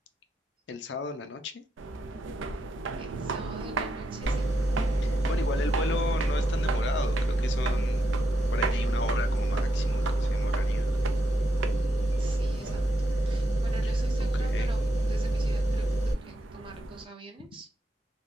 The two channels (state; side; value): normal; both; correlation 0.83